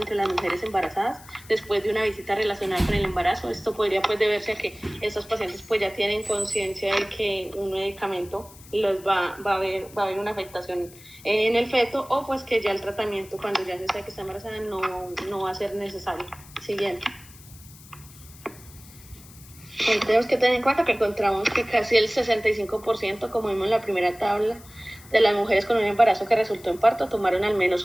las mujeres embarazadas después de una visita relacionada con el embarazo. Esto podría pues deberse a que estos pacientes pues ya tienen conciencia de que un medicamento los va a haber una afectación en el feto o pues que ya el tratamiento cuando ya se sabe que está embarazada no va a ser necesario. Siguiente. Tenemos que tener en cuenta que encontramos que casi el 65%, como vimos en la primera tabla, de las mujeres con un embarazo que resultó en parto tomaron al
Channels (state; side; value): noise; left; hiss, 21 dB below the sound